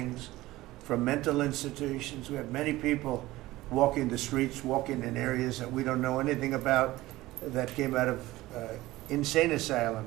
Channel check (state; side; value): quieter; left; 17.7 dB